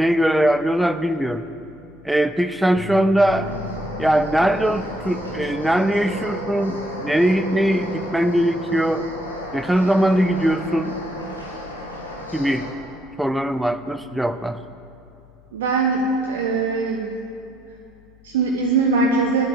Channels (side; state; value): left; noise; hum, 28 dB below the sound